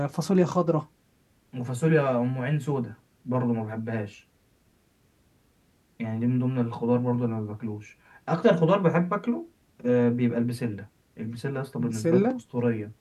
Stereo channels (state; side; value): identical; both; correlation 1.00